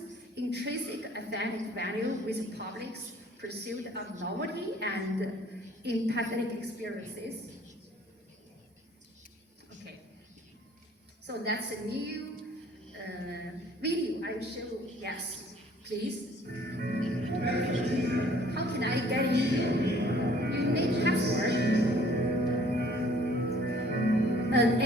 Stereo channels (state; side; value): normal; both; correlation 0.56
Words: intrinsic aesthetic value with public's pursuit of novelty and empathetic experiences. Okay, so that's a new video I will show you. Yes, please. How can I get in? You need password. An